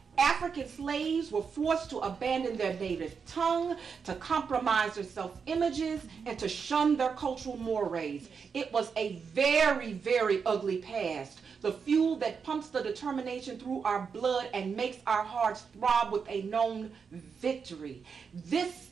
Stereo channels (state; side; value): quieter; left; 5.9 dB